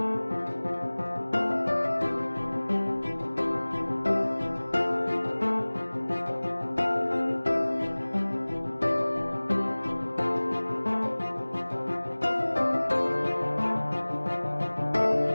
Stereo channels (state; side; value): inverted; both; correlation -1.00